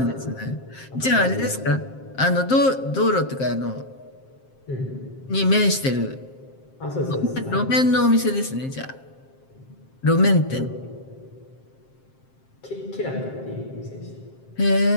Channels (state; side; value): late; right; 7.6 ms